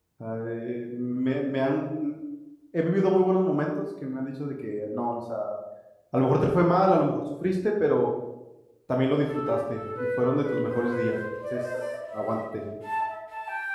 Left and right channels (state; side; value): identical; both; correlation 1.00